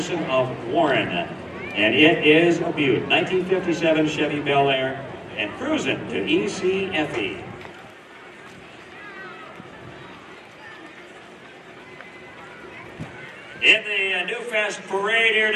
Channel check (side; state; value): both; identical; correlation 1.00